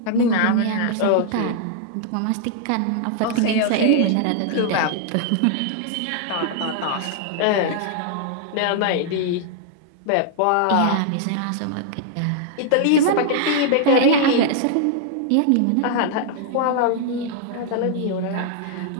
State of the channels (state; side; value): different; both; correlation 0.00